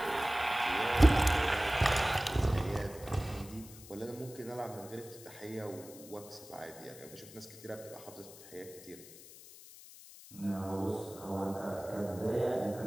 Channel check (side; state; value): left; noise; hiss, 18 dB below the sound